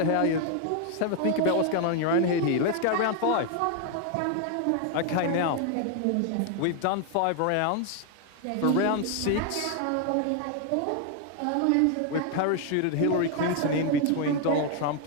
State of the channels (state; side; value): different; both; correlation 0.00